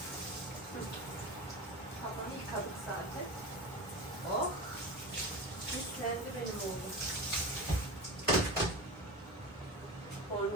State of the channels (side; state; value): both; normal; correlation 0.27